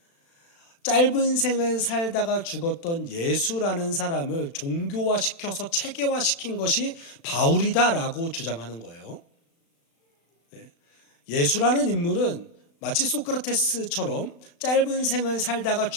짧은 생을 살다가 죽었던 예수라는 사람을 종교화시켜서 체계화시킨 것이 바울이다라고 주장하는 거예요. 예수라는 인물은 마치 소크라테스처럼 짧은 생을 살다가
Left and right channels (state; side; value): late; right; 36 ms